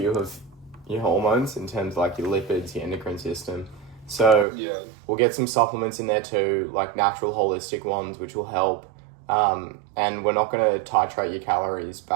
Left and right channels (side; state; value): left; drops out; at 4.5 s